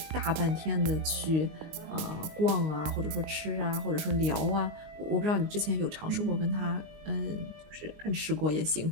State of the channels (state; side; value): late; left; 19 ms